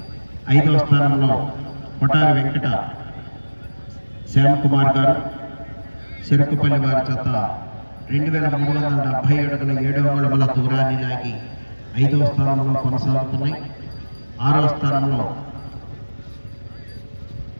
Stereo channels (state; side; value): inverted; both; correlation -1.00